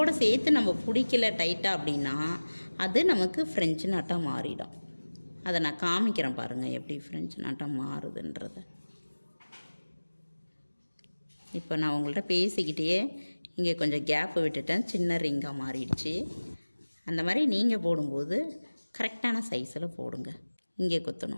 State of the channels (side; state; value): both; inverted; correlation -1.00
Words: சேர்த்து நம்ம பிடிக்கல டைட்டாக அப்படின்னா அது நமக்கு ஃப்ரெஞ்சு நாட்டாக மாறிடும். அதை நான் காமிக்கிறேன் பாருங்கள், எப்படி ஃப்ரெஞ்சு நாட்டாக மாறுதுன்றதை. இப்போ நான் உங்கள்கிட்ட பேசிக்கிட்டே இங்கே கொஞ்சம் கேப்பு விட்டுட்டேன், சின்ன ரிங்காக மாறிடுச்சு. அந்த மாதிரி நீங்கள் போடும்போது கரெக்டான சைஸில் போடுங்க. இங்கே